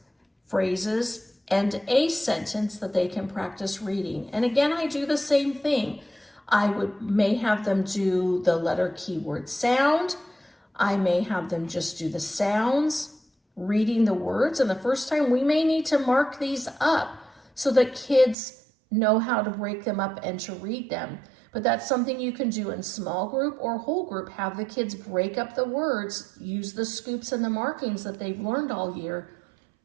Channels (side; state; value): left; drops out; at 18.4 s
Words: phrases, and a sentence that they can practice reading. And again, I do the same thing. I may have them do the letter keyword sound. I may have them just do the sounds, reading the words. And the first time we may need to mark these up so that kids know how to break them up and to read them. But that's something you can do in small group or whole group. Have the kids break up the words, use the scoops and the markings that they've learned all year